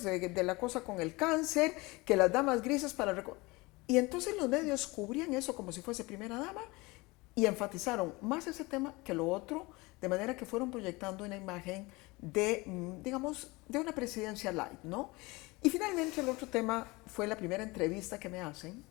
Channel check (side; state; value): right; quieter; 23.6 dB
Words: de la cosa con el cáncer, que las damas grises para recaudar. Y entonces los medios cubrían eso como si fuese primera dama y enfatizaron más ese tema que lo otro, de manera que fueron proyectando una imagen de, digamos, de una presidencia light, ¿no? Y finalmente el otro tema fue la primera entrevista que me hacen